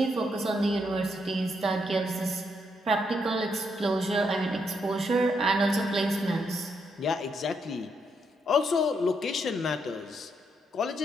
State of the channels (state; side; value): normal; both; correlation 0.77